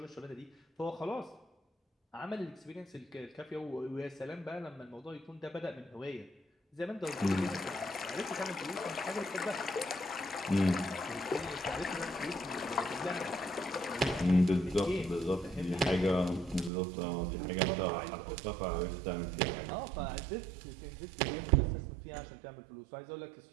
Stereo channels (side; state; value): left; drops out; at 16.7 s